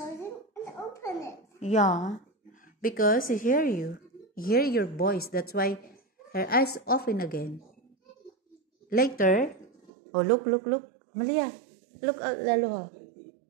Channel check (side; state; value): left; drops out; at 9.9 s